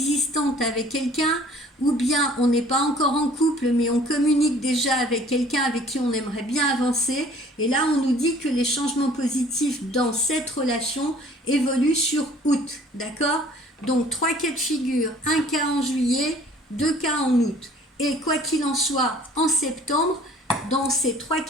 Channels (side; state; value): both; normal; correlation 0.53